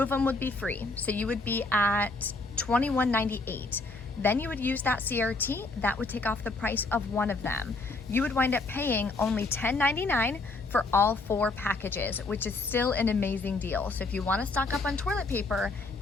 them would be free. So you would be at $21.98. Then you would use that CRT, that would take off the price of 1 of them. You would wind up paying only $10.99 for all 4 packages, which is still an amazing deal. So if you want to stock up on toilet paper,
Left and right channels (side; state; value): right; quieter; 3.4 dB